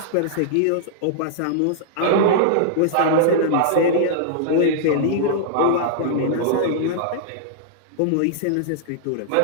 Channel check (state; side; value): different; both; correlation -0.01